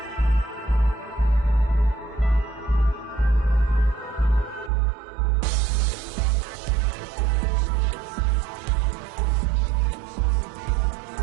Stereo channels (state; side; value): drops out; left; at 4.7 s